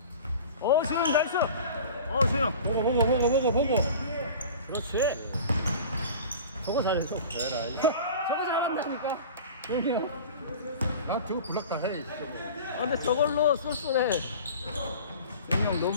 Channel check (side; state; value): both; inverted; correlation -0.39